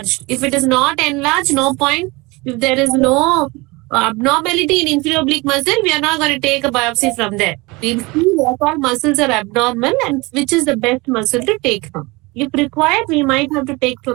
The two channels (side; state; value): left; quieter; 24.4 dB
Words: If it is not enlarged, no point. If there is no abnormality in inferior oblique muscle, we are not going to take a biopsy from there. We'll see what all muscles are abnormal and which is the best muscle to take from. If required, we might have to take